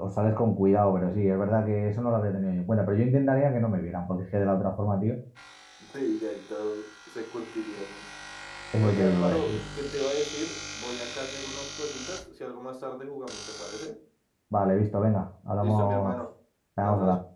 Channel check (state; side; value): identical; both; correlation 1.00